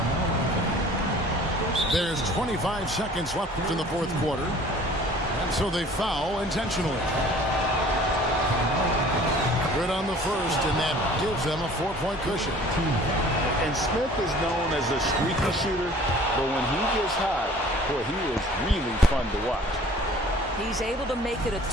There's 25 seconds left in the fourth quarter. And so they foul intentionally. Good on the first, and that gives them a 4-point cushion. And Smith is known as a streaky shooter, but when he gets hot, Boy, he is really fun to watch. He's able to make it a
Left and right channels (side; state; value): both; normal; correlation 0.50